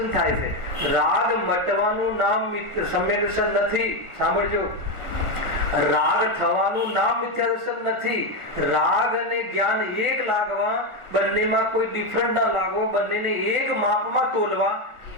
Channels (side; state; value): left; late; 1.4 ms